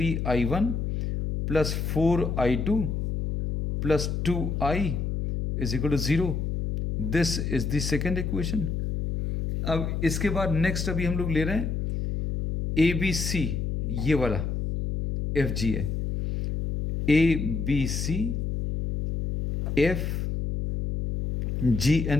plus 4I2 plus 2I is equal to 0। This is the second equation. अब इसके बाद नेक्स्ट अभी हम लोग ले रहे हैं ABC, ये वाला FGA, ABC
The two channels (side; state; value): left; noise; hum, 2 dB below the sound